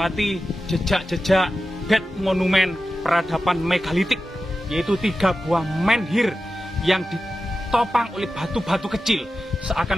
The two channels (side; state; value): both; normal; correlation 0.92